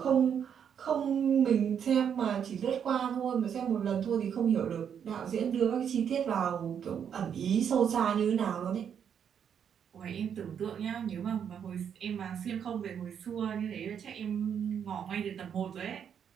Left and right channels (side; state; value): left; quieter; 8.1 dB